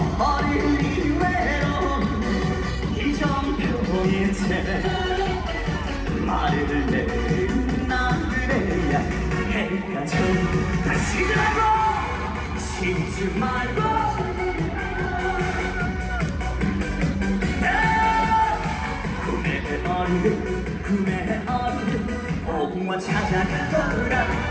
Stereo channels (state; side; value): identical; both; correlation 1.00